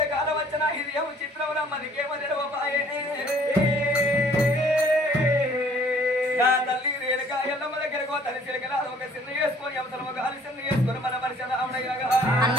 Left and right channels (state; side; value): normal; both; correlation 0.56